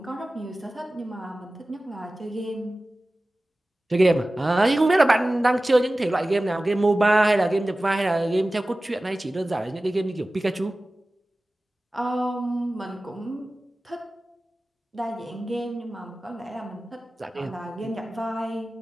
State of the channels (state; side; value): normal; both; correlation 0.97